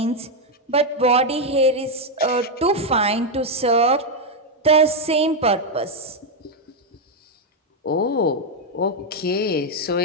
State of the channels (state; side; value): normal; both; correlation 0.02